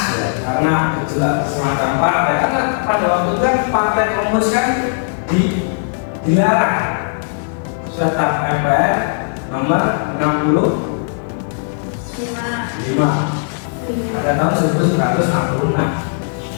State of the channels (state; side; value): silent; right; digital silence